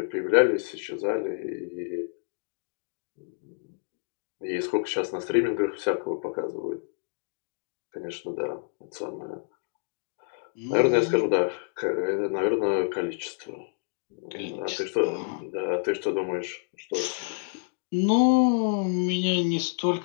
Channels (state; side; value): silent; right; digital silence